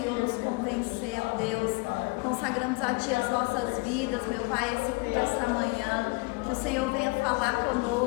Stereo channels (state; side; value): quieter; right; 27.1 dB